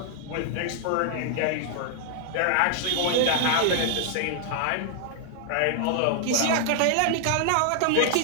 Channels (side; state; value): both; different; correlation 0.00